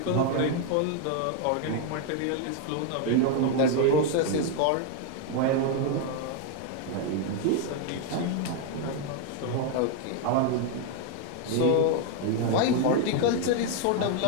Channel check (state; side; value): different; both; correlation 0.01